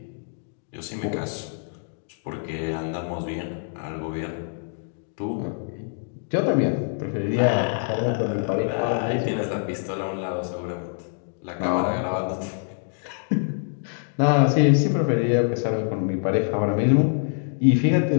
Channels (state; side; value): silent; right; digital silence